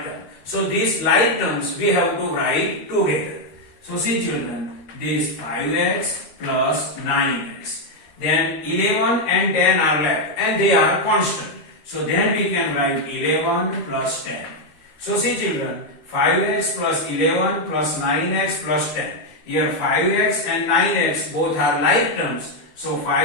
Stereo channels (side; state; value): right; late; 13 ms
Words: term. So these like terms we have to write together. So see children, this 5x plus 9x. Then 11 and 10 are left and they are constant. So then we can write 11 plus 10. So see children, 5x plus 11 plus 9x plus 10. Here 5x and 9x both are like terms. So